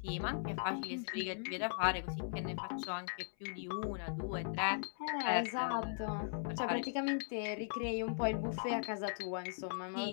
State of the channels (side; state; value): right; silent; 52 dB below the other